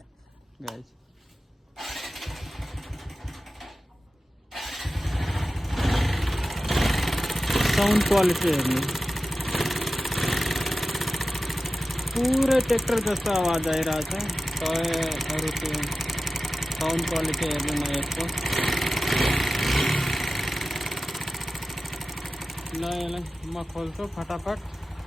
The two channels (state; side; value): normal; both; correlation 0.94